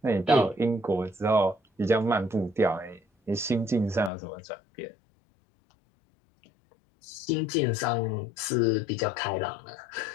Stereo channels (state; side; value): drops out; right; at 4.1 s